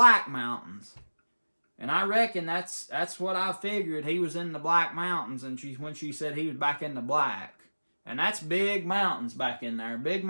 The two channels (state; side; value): inverted; both; correlation -1.00